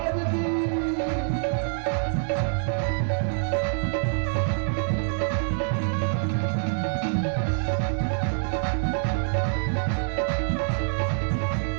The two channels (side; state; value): left; silent; digital silence